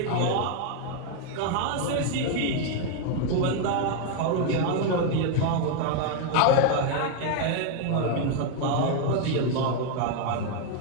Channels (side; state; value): both; different; correlation 0.01